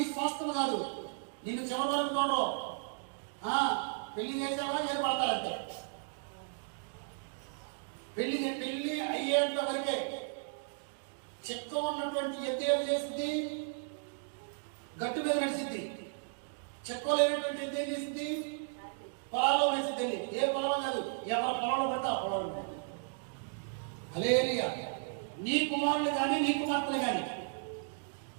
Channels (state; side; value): silent; left; digital silence